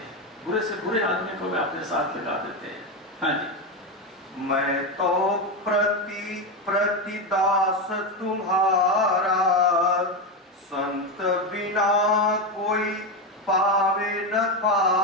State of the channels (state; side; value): normal; both; correlation 0.12